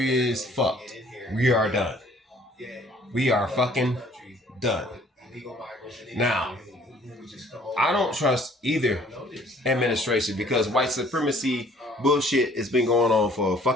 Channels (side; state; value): both; normal; correlation 0.57